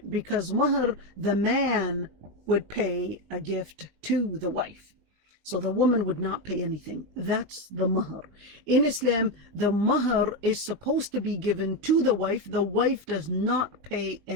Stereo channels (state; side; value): late; left; 20 ms